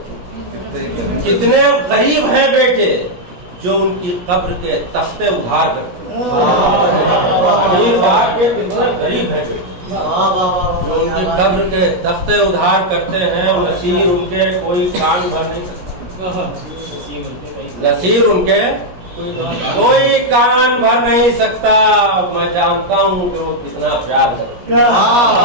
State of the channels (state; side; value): late; left; 17 ms